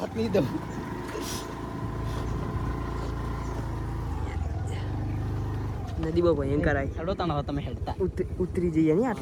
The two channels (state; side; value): identical; both; correlation 1.00